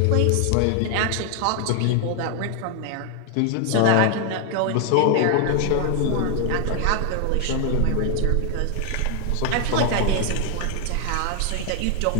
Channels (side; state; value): both; different; correlation 0.00